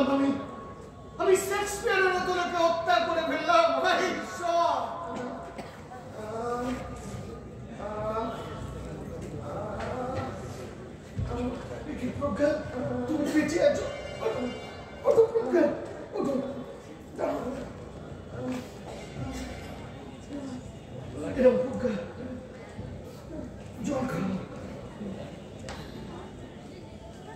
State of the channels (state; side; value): identical; both; correlation 1.00